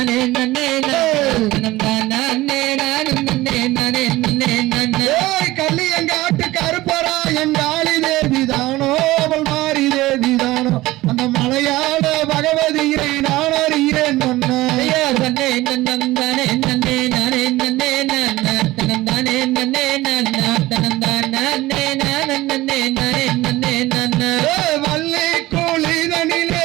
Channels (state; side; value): quieter; left; 18.2 dB